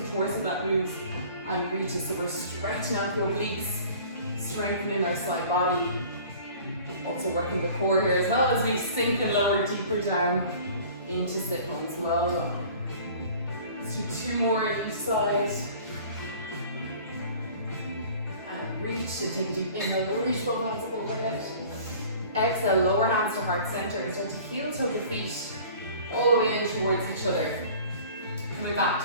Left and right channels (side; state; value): both; inverted; correlation -0.47